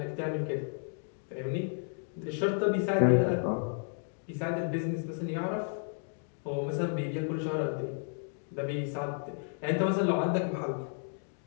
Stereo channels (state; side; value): silent; right; 55 dB below the other